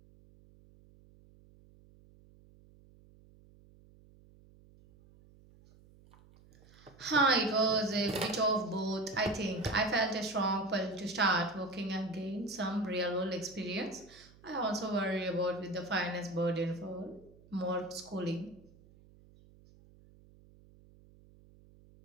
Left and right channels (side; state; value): right; noise; hum, 25 dB below the sound